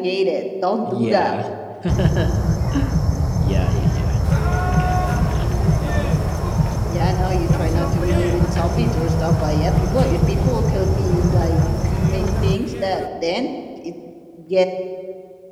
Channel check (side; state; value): both; identical; correlation 1.00